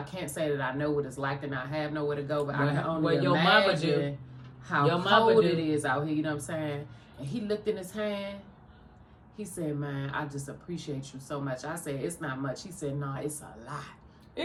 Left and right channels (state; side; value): identical; both; correlation 1.00